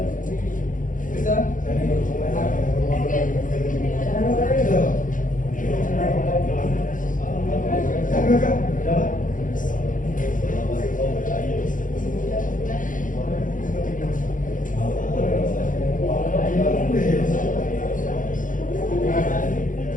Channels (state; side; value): late; right; 0.38 ms